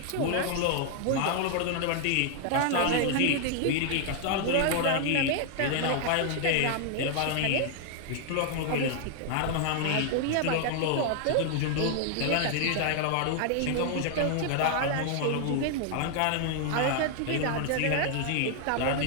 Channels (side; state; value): both; different; correlation 0.00